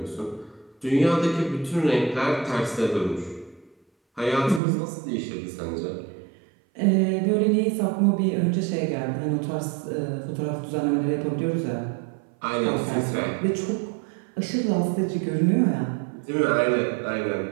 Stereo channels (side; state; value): left; drops out; at 4.6 s